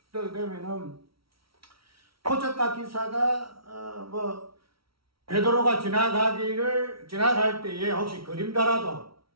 그렇게 되면은 표적과 기사가 베드로가 지나갈 때에 혹시 그림자라도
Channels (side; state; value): left; late; 0.75 ms